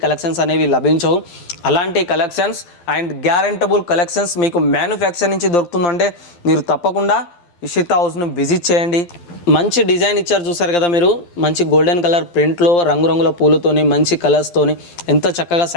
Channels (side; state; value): right; late; 12 ms